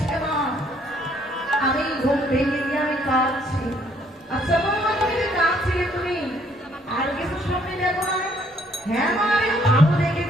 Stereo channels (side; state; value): both; normal; correlation 0.66